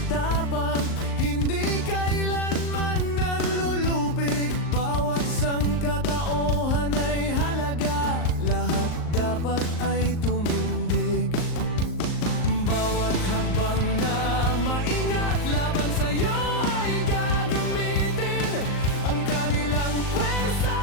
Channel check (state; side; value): late; right; 38 ms